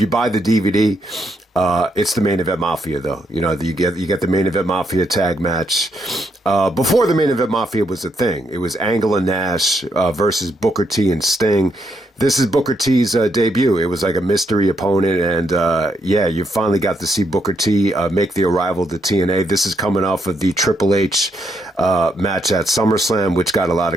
buy the DVD, it's the Main Event Mafia, though. You get the Main Event Mafia tag match. Before the Main Event Mafia was a thing, it was Angle and Nash versus Booker T and Sting. This is Booker T's debut. It was like a mystery opponent, and you finally got to see Booker T make the arrival to TNA. This is coming off of the Triple H match at SummerSlam, which got a lot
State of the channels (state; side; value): normal; both; correlation 0.77